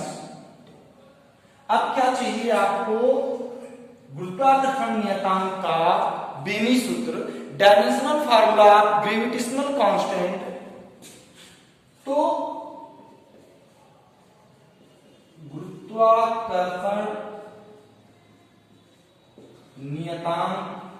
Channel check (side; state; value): both; identical; correlation 1.00